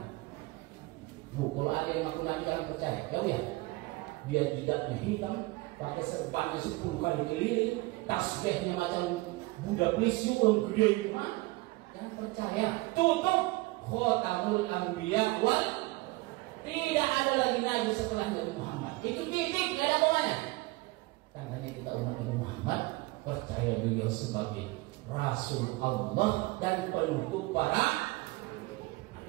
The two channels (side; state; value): left; quieter; 22.3 dB